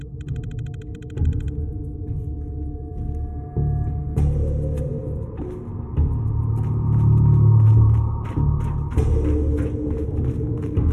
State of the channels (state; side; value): identical; both; correlation 1.00